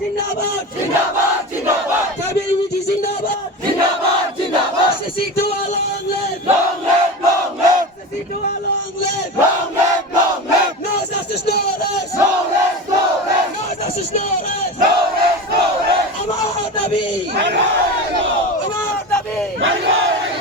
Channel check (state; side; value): normal; both; correlation 0.27